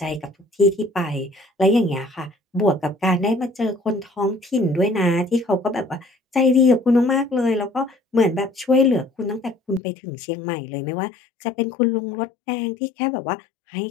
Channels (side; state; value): right; drops out; at 9.8 s